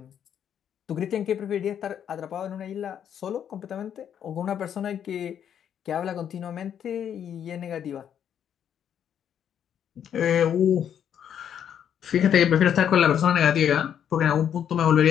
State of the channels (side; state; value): right; quieter; 9.0 dB